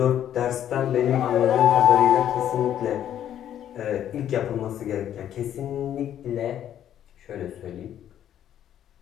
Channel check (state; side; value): quieter; right; 10.6 dB